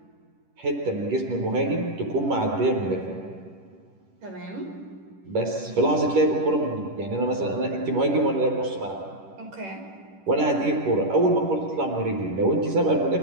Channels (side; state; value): left; late; 10 ms